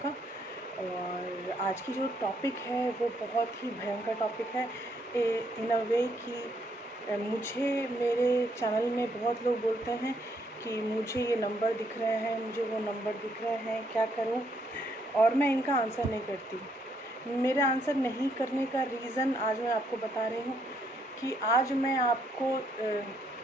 और आज की जो टॉपिक है वो बहुत ही भयंकर टॉपिक है इन अ वे कि मुझे मेरे चैनल में बहुत लोग बोलते हैं कि मुझे ये नंबर दिख रहे हैं, मुझे वो नंबर दिख रहे हैं, क्या करूं, और मैं इनका आंसर नहीं करती। मेरा आंसर नहीं करने का रीज़न आज मैं आपको बता रही हूँ कि आज मैं आपको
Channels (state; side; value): normal; both; correlation 0.72